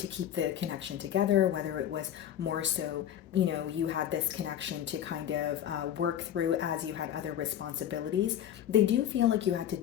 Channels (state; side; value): quieter; right; 10.5 dB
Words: keep the connection together, whether it was more so, you had this connection to kind of work through as you had other responsibilities. They do feel like you had to